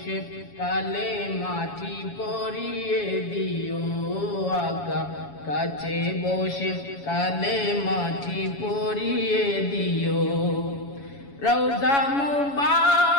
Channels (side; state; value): right; late; 7.2 ms